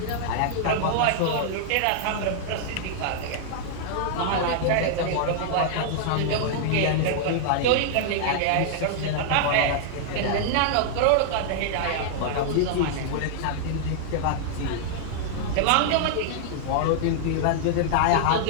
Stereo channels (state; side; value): different; both; correlation -0.01